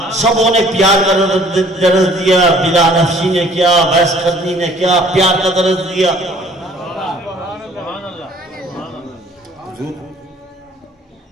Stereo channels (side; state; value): both; normal; correlation 0.55